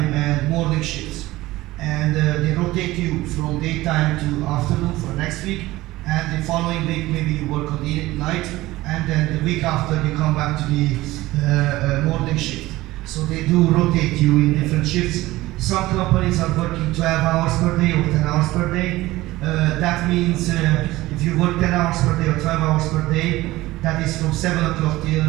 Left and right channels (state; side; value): quieter; left; 18.0 dB